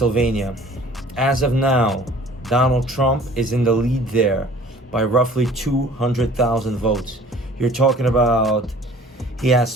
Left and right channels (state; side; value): normal; both; correlation 0.50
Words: As of now, Donald Trump is in the lead there by roughly 200,000 votes. You're talking about he